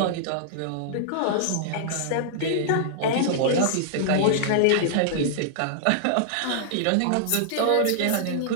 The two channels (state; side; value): different; both; correlation -0.01